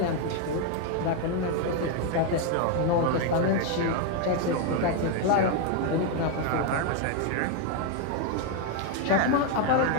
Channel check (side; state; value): both; different; correlation 0.01